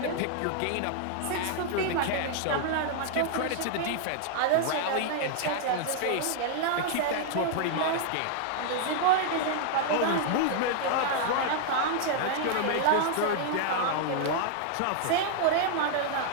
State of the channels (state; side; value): different; both; correlation -0.01